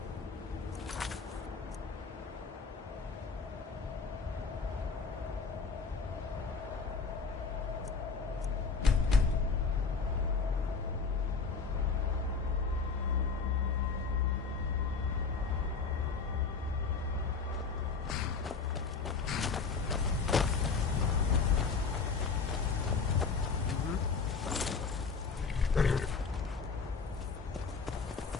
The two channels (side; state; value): right; quieter; 5.0 dB